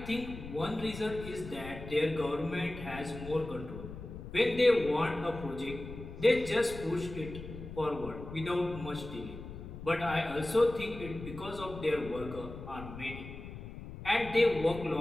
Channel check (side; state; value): left; noise; rumble, 11 dB below the sound